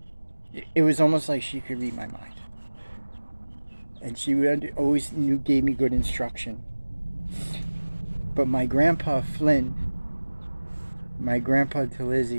it was almost like she could read my mind. And she always gave me good instruction. But my grandpa Flynn, my grandpa to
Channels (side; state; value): both; inverted; correlation -1.00